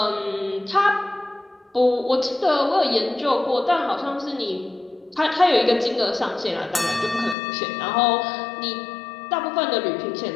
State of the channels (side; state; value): right; drops out; at 7.4 s